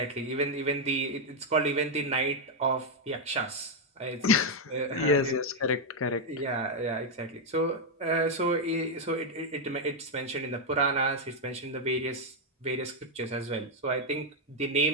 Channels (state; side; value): normal; both; correlation 0.00